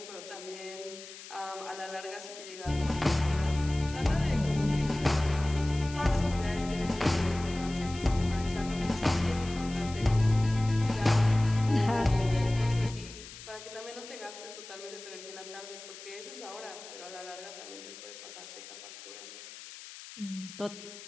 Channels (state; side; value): noise; left; hiss, 15 dB below the sound